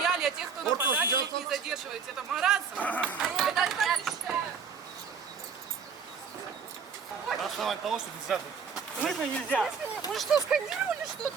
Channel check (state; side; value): quieter; left; 6.1 dB